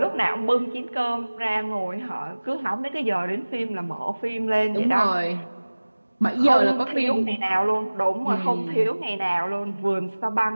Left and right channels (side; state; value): both; inverted; correlation -1.00